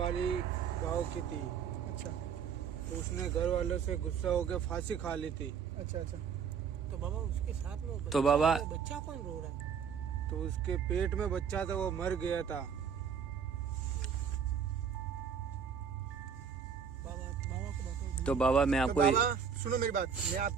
गांव की थी। अच्छा, तो उसने घर वालों से गुस्सा होकर फांसी खा ली थी। अच्छा। तो बाबा उसके साथ में तो बाबा बच्चा कौन रो रहा है? तो उसके पेट में बच्चा था, वो मर गया था। बाबा बाबा को बताओ। तो बाबा मैं तो आपको बाबा सुनो मेरी बात, मैं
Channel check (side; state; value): left; quieter; 6.9 dB